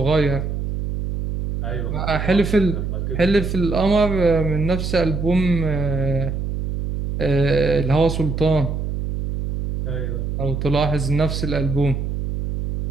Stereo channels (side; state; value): right; noise; hum, 3 dB below the sound